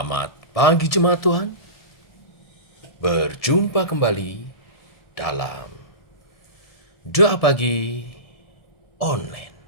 pagi jemaat Tuhan. Berjumpa kembali dalam doa pagi online.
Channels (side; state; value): right; late; 1.7 ms